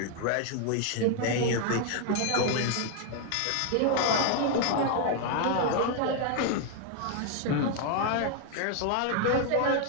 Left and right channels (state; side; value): different; both; correlation 0.00